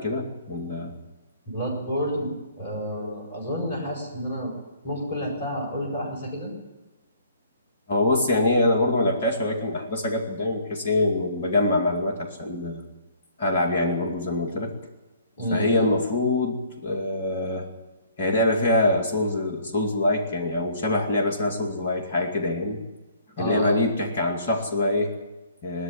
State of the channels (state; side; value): inverted; both; correlation -0.58